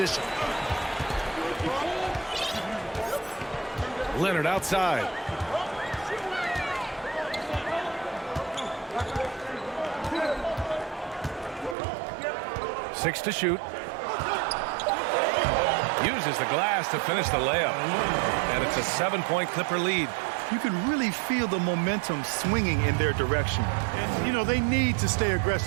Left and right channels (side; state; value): left; drops out; at 11.8 s